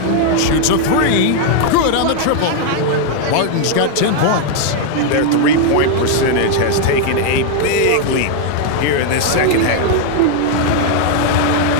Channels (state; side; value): different; both; correlation 0.00